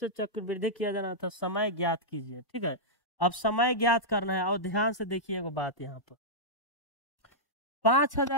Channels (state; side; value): late; right; 1.1 ms